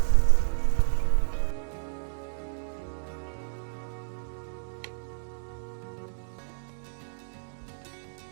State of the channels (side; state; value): left; silent; digital silence